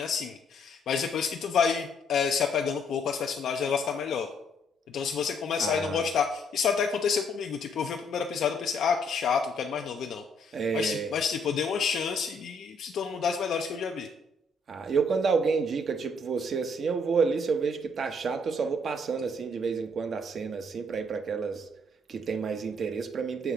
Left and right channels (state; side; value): normal; both; correlation 0.68